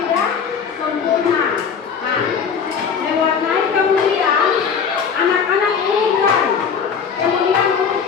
sempurna. Nah, diwarnai kemudian anak-anak urutkan,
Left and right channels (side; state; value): right; quieter; 6.6 dB